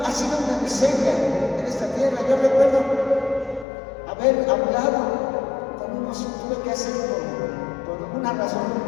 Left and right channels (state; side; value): drops out; right; at 3.7 s